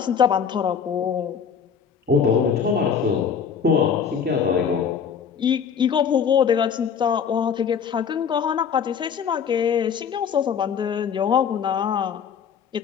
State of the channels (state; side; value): quieter; right; 7.1 dB